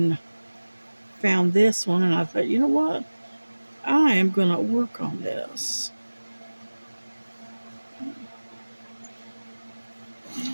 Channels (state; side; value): inverted; both; correlation -1.00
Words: found this one, and I thought, you know what, I am going to work on this.